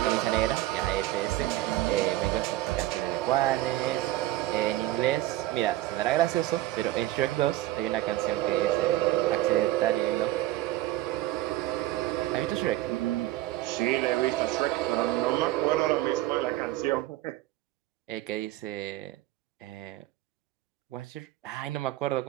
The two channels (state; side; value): quieter; left; 15.9 dB